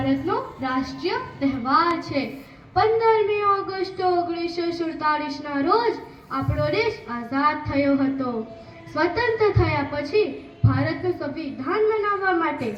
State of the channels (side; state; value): both; identical; correlation 1.00